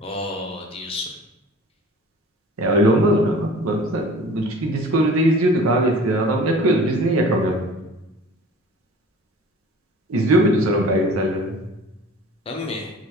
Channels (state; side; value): normal; both; correlation 0.44